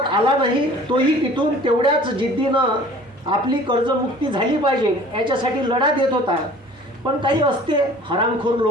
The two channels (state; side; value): normal; both; correlation 0.48